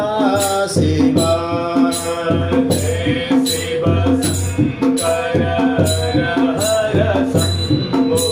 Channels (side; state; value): both; identical; correlation 1.00